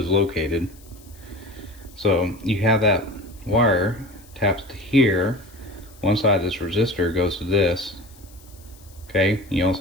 located. So you have that wire taps to here. One side of this resistor goes to this. Okay, you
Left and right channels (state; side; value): noise; left; hiss, 25 dB below the sound